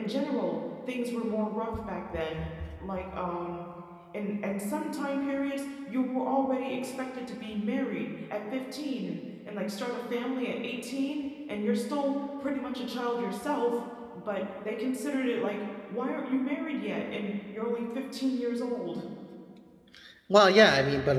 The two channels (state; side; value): identical; both; correlation 1.00